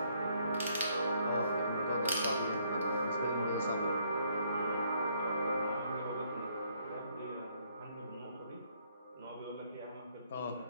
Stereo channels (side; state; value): both; inverted; correlation -0.68